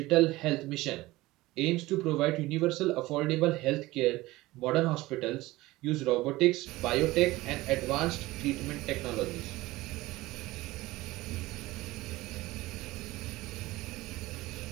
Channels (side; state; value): left; quieter; 18.9 dB